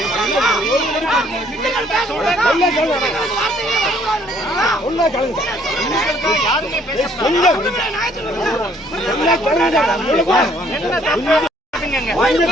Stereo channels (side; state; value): both; normal; correlation 0.63